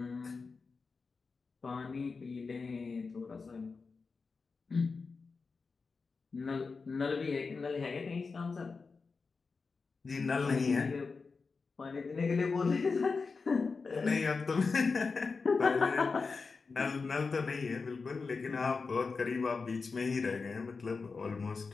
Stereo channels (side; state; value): right; quieter; 4.6 dB